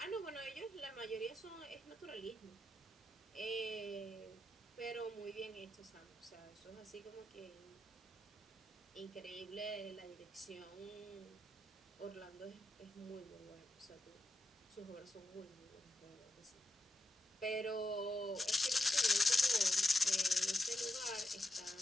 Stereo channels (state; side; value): normal; both; correlation 0.85